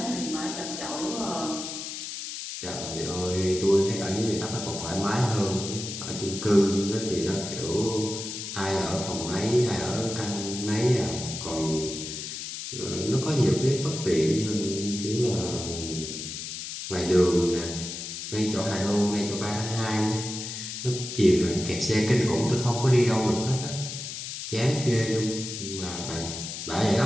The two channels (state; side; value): noise; left; hiss, 7 dB below the sound